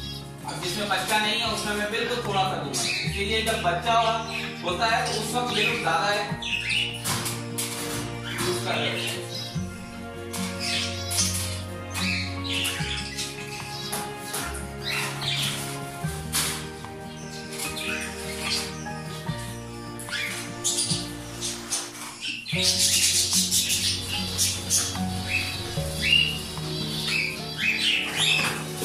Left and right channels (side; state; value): both; identical; correlation 1.00